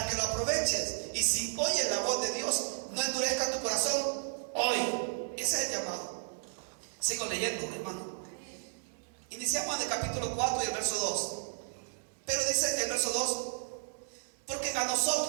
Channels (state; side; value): silent; left; digital silence